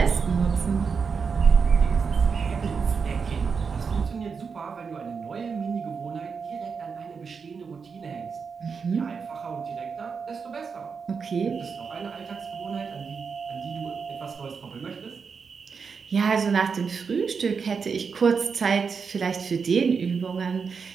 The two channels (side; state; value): left; quieter; 5.6 dB